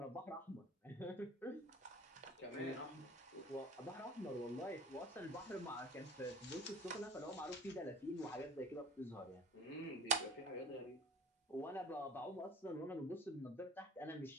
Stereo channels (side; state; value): both; normal; correlation 0.41